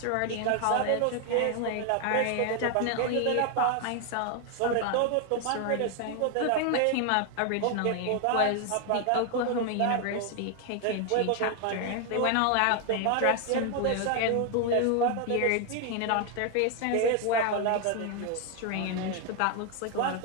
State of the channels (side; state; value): both; different; correlation 0.01